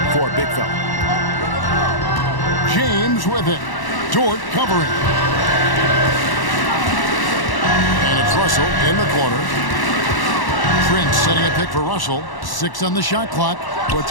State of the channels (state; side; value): late; right; 1.1 ms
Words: for a big fella. James with it. Dort covering. And it's Russell in the corner. Prince setting a pick for Russell. 6 on the shot clock.